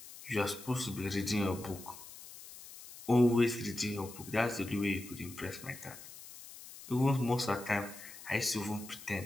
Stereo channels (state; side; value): noise; left; hiss, 15 dB below the sound